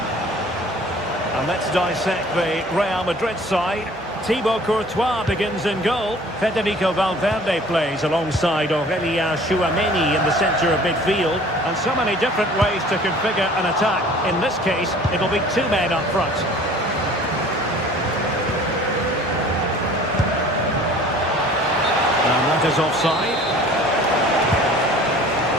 And let's dissect the Real Madrid side. Thibaut Courtois begins in goal. Federico Valverde plays alongside Aurélien Tchouaméni in the centre of midfield. And so many different ways to configure an attack. In this case, it'll be two men up front. And that is offside.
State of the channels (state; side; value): noise; right; hum, 29 dB below the sound